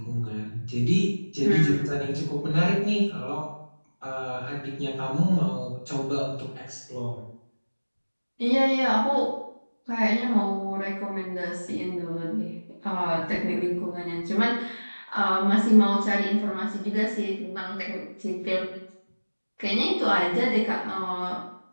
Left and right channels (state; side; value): inverted; both; correlation -1.00